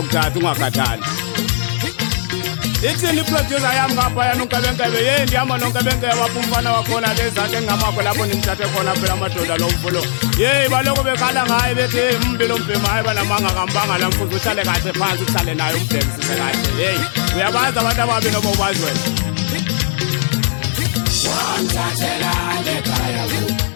ungakhathali ithini iproducer yam ngaphayana unkebenkebe ndihamba nonkebenkebe wapha umfana wakhona lezanti engingamakho lapho ndimthathe khona phela amadoda lo mfulo baloko bekhala ngaye bethi mbi lo mbhema hayi banamanga kambanga la mfuzi uhlale kahle phansi uhlale naye umbhekisise kahle uyabazi abantu ababi noma ubazi wena wamthathelana ekhaya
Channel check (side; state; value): right; silent; digital silence